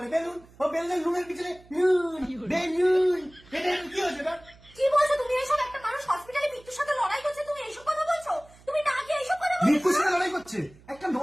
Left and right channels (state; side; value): noise; right; hum, 25 dB below the sound